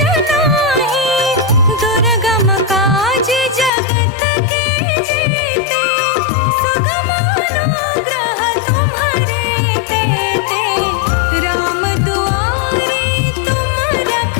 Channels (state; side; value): drops out; right; at 3.7 s